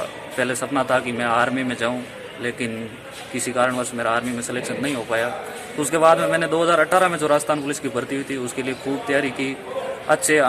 पहले सपना था कि मैं आर्मी में जाऊं, लेकिन किसी कारणवश मेरा आर्मी में सिलेक्शन नहीं हो पाया। तो उसके बाद में मैंने 2018 में जो राजस्थान पुलिस की भर्ती हुई थी उसके लिए खूब तैयारी की, अच्छे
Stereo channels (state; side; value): identical; both; correlation 1.00